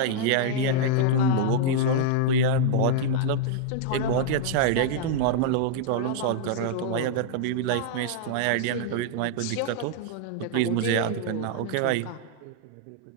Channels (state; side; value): different; both; correlation -0.01